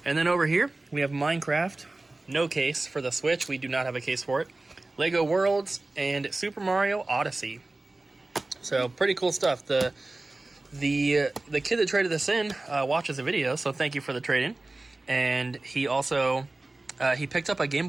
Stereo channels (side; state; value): left; quieter; 3.0 dB